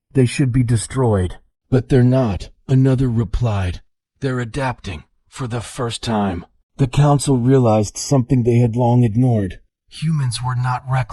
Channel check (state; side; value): identical; both; correlation 1.00